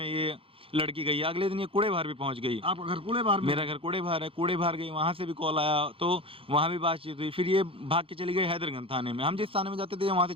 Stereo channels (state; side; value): late; left; 0.26 ms